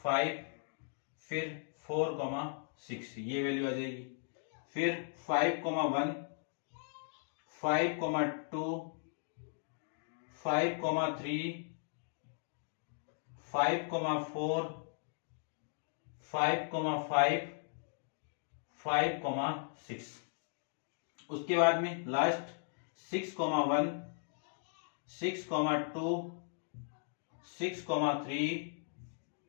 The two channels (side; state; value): right; silent; digital silence